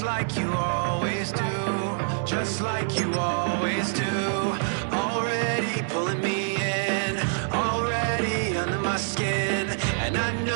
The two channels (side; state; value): left; silent; 61 dB below the other